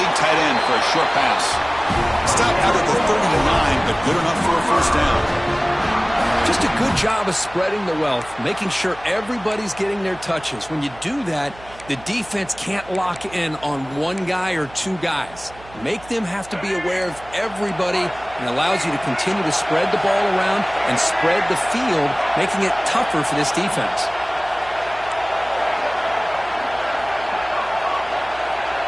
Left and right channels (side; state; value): right; noise; hum, 21 dB below the sound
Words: tight end for a short pass. Stop out at the 39, but good enough for a first down. Just a good job of spreading the wealth, making sure everybody's getting their touches. When you do that, the defense can't lock in on one guy or 2 guys. Make them have to be aware of everybody, and allows you to continue to spread the ball around and spread the field, making it tougher for this defense.